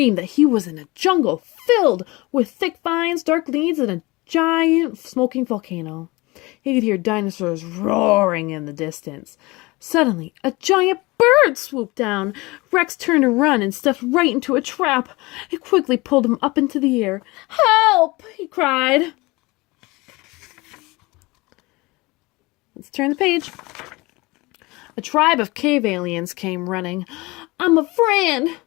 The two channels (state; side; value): quieter; right; 23.0 dB